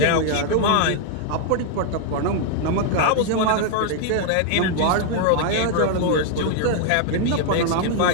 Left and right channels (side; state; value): both; different; correlation 0.00